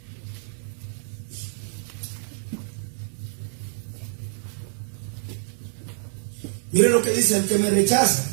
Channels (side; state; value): left; silent; digital silence